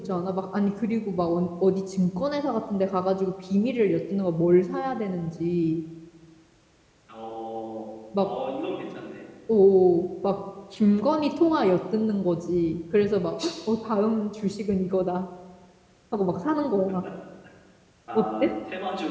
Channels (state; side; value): identical; both; correlation 1.00